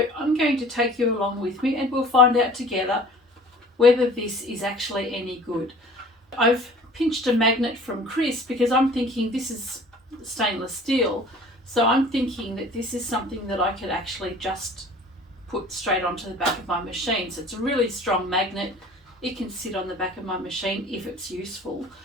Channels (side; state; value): both; normal; correlation 0.47